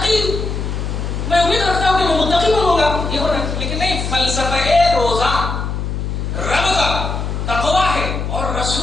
میں امید رکھتا ہوں کہ میں متقی بنوں گا. یہ ہونا، لیکن نہیں، فلسفہ روزہ رب کا تقویٰ ہے اور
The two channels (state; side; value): noise; left; hum, 3 dB below the sound